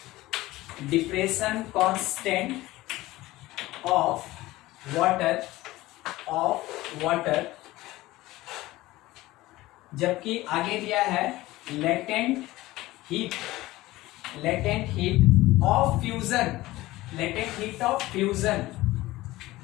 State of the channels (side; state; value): right; quieter; 18.0 dB